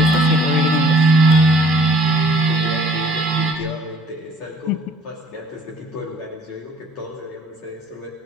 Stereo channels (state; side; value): normal; both; correlation 0.57